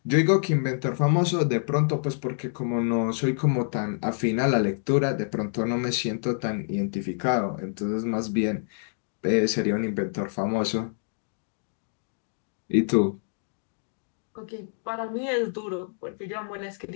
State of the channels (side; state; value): right; silent; digital silence